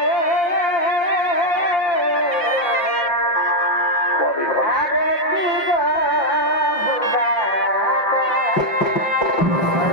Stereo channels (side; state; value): right; late; 5.7 ms